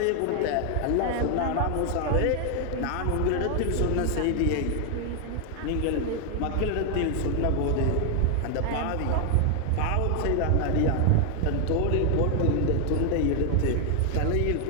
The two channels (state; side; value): different; both; correlation 0.00